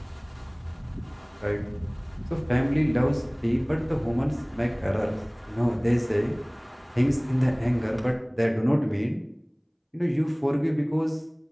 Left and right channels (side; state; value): both; identical; correlation 1.00